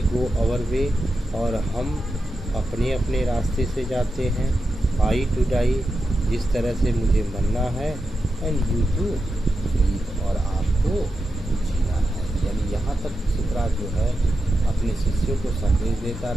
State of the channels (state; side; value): normal; both; correlation 0.89